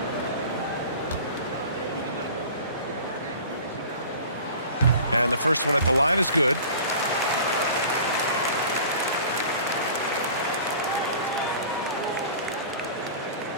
And the first one at the line is good.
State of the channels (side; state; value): both; inverted; correlation -0.41